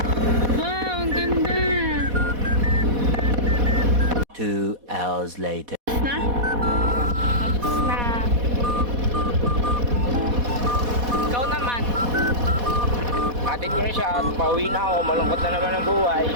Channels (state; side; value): late; left; 4.1 ms